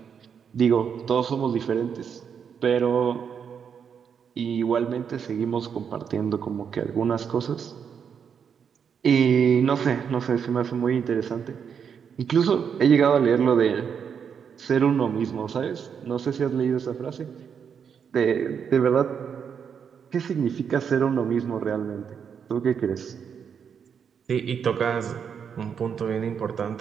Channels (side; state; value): left; quieter; 7.2 dB